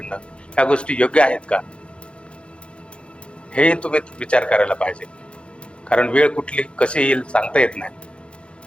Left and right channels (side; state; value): right; late; 0.058 ms